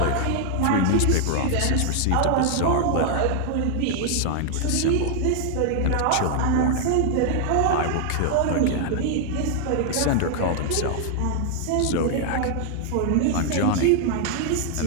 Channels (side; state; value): both; different; correlation 0.00